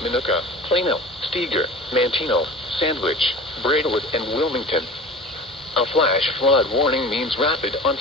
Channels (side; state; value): both; normal; correlation 0.37